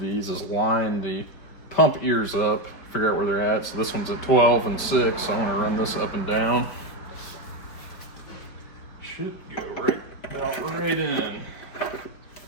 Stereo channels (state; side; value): late; right; 5.2 ms